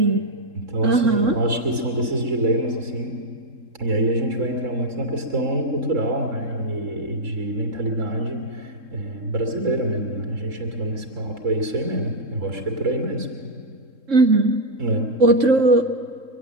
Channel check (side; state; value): left; late; 3.7 ms